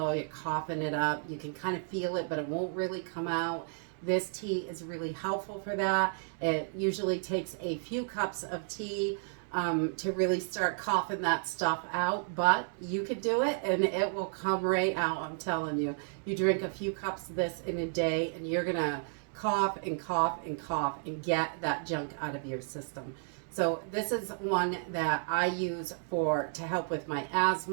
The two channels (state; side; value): silent; left; 56 dB below the other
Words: you're coughing it up, you can kind of feel it, but it won't really come out. This tea is really helpful for that. It usually takes a few cups of tea to really start coughing that stuff out, but you could do it and it will come right out, I'm telling you. You drink a few cups of this in a day and you're gonna cough and cough and cough and get that junk out of your system. So this is one that I use to help with my